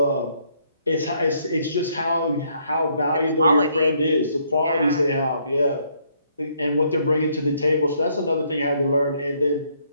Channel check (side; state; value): both; inverted; correlation -0.69